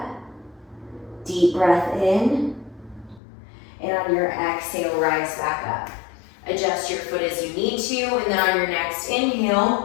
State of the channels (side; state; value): right; drops out; at 3.2 s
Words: Deep breath in. And on your exhale, rise back up. Adjust your foot as you need to, and then on your next